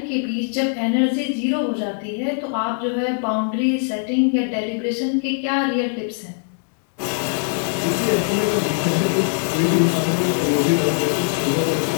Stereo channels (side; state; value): right; silent; 58 dB below the other